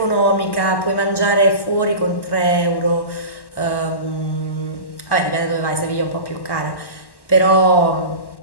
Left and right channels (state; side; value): late; right; 1.1 ms